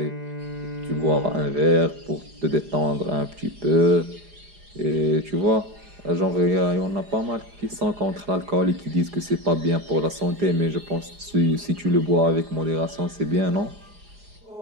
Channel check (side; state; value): left; late; 4.9 ms